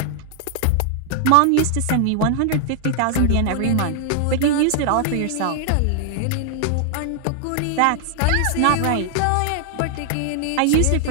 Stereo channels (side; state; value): both; different; correlation 0.00